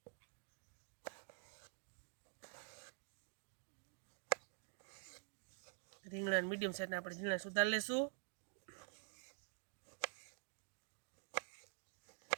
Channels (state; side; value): silent; left; digital silence